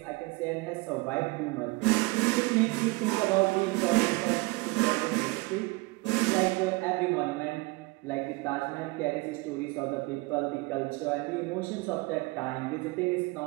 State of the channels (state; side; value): quieter; left; 25.0 dB